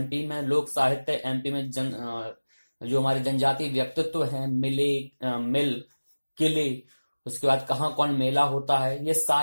में लोक साहित्य, एमपी में जो हमारे जनजातीय व्यक्तित्व हैं, मिल, किले, उसके बाद कहाँ कौन मेला होता है, ये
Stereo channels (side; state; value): both; inverted; correlation -1.00